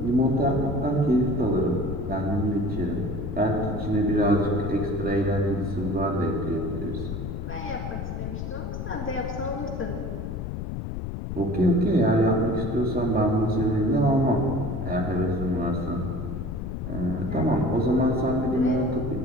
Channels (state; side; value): noise; left; rumble, 5 dB below the sound